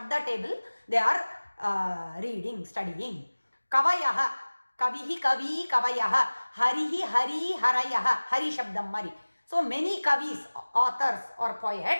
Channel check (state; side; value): inverted; both; correlation -1.00